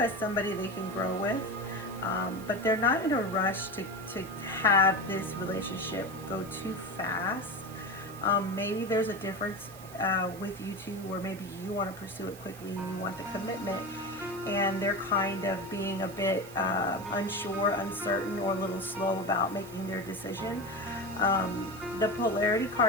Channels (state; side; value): noise; right; hiss, 19 dB below the sound